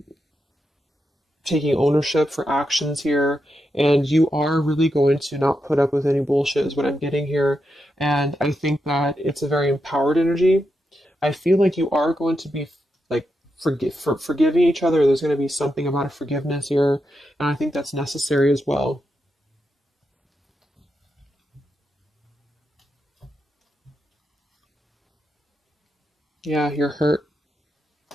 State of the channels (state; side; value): normal; both; correlation 0.85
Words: taking ownership for actions here, and you are really going to not put up with any bullshit is what I'm getting here. And I think that it's a very empowered energy. I feel like you are going to be like forgiving each other. There's going to be something about a forgiveness here, and I think that's necessary as well. Yeah, you're hurt.